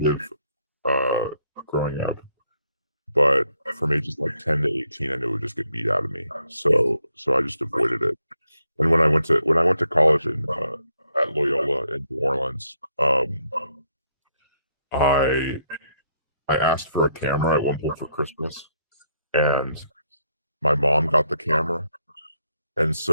growing up, but from ages like 10 to 18, I knew it would just get beat out of me. So I just avoided it. And when I went to college at Loyola in New Orleans, I asked for a camera at one point for Christmas, and my mom got the camera, and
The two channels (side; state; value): both; inverted; correlation -0.75